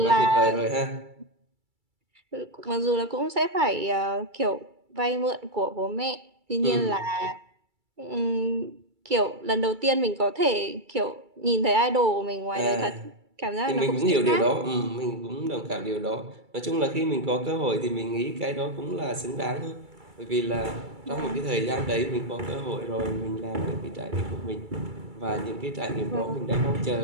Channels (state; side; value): late; left; 2.3 ms